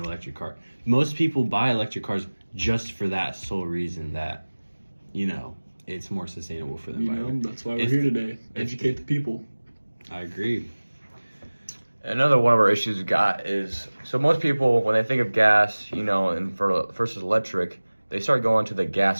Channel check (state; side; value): inverted; both; correlation -1.00